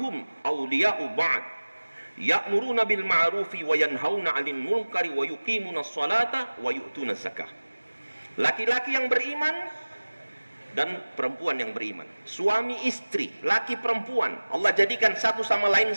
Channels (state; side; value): inverted; both; correlation -1.00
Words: awliya'u ba'd. Ya'muruna bil ma'rufi wa yanhauna 'anil munkari wa yuqimuna sholata wa yu'tuna zakah. Laki-laki yang beriman dan perempuan yang beriman, suami istri, laki perempuan, Allah jadikan satu sama lain